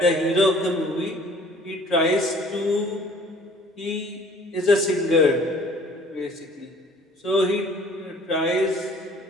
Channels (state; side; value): normal; both; correlation 0.53